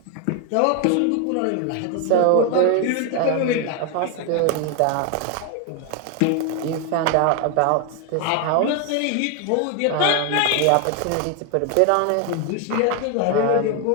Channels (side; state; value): both; different; correlation 0.01